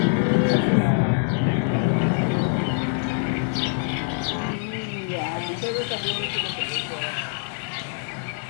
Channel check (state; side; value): silent; right; 62 dB below the other